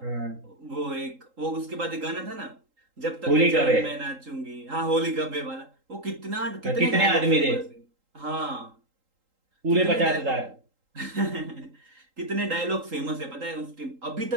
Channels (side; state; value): left; late; 3.8 ms